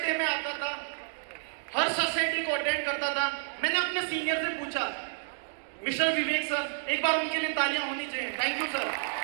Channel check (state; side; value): silent; left; digital silence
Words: डे में आता था, हर सक्सेस डे को अटेंड करता था। मैंने अपने सीनियर से पूछा, मिस्टर विवेक सर, एक बार उनके लिए तालियां होनी चाहिए, थैंक यू सर।